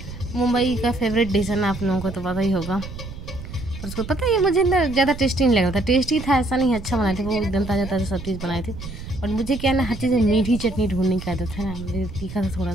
मुंबई का फेवरेट डिश है ना, आप लोगों को तो पता ही होगा। और उसको पता है, मुझे ना ज़्यादा टेस्टी नहीं लगा था। टेस्टी था ऐसा नहीं, अच्छा बनाए थे वो, एकदम ताज़ा ताज़ा सब चीज़ बनाए थे। और मुझे क्या ना, हर चीज़ में मीठी चटनी ढूंढने की आदत है ना, मुझे तीखा था थोड़ा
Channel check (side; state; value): right; noise; rumble, 11 dB below the sound